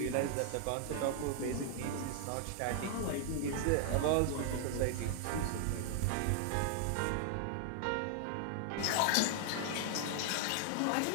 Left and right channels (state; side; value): different; both; correlation 0.00